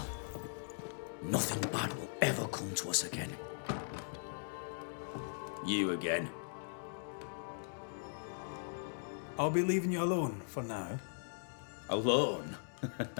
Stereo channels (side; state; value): right; silent; digital silence